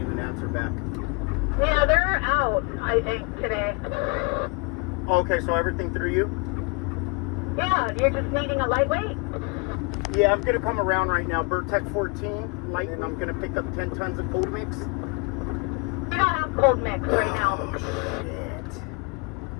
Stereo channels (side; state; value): right; quieter; 30.2 dB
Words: an answer back. Yeah, they're out, I think, today. Okay, so everything through you? Yeah, you're just needing a lightweight? Yeah, I'm gonna come around right now. Bertec 14 light, and I'm gonna pick up 10 tons of cold mix. We don't have cold mix right now. Shit.